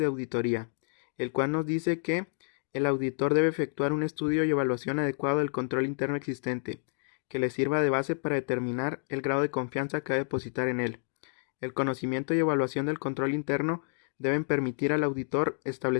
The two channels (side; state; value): right; silent; digital silence